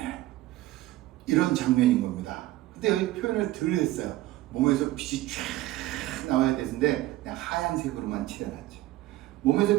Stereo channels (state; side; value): quieter; left; 16.5 dB